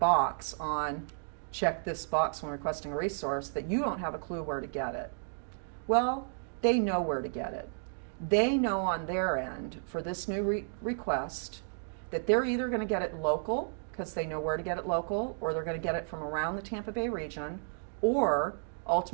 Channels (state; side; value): silent; left; digital silence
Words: on check this box when requesting a resource that you don't have a clue where to get it. Well, they know where to get it. They know on their end for this new request that they're either going to get it local because they know where to get it local, or they're going to get it from around the Tampa Bay region, or